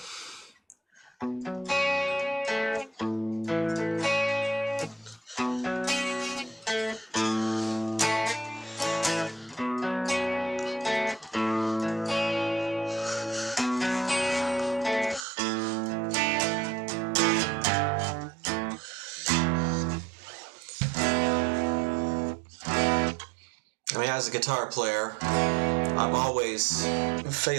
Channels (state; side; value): drops out; left; at 15.2 s